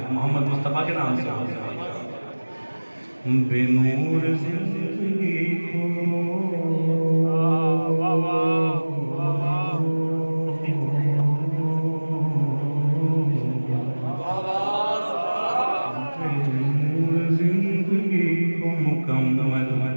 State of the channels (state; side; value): inverted; both; correlation -1.00